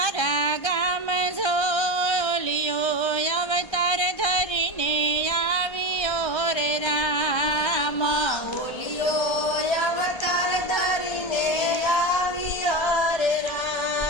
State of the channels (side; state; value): right; late; 1.3 ms